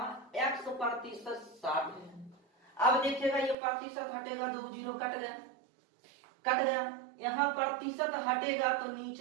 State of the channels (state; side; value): drops out; left; at 3.6 s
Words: x% 60 है। अब देखिएगा ये प्रतिशत हटेगा, 2 जीरो कट गया, यहाँ प्रतिशत हटेगा तो